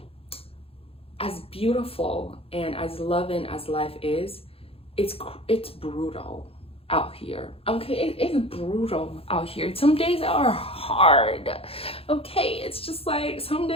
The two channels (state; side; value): late; right; 0.27 ms